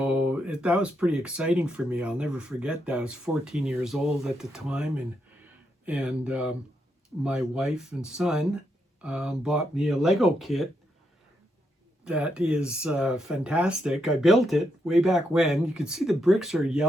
that was pretty exciting for me. I'll never forget that. I was 14 years old at the time, and my wife and son bought me a Lego kit that is fantastic. I built it way back when. You can see the bricks are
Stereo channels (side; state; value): both; normal; correlation 0.80